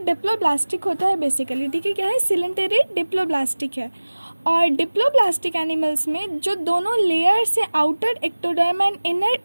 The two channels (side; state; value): both; inverted; correlation -1.00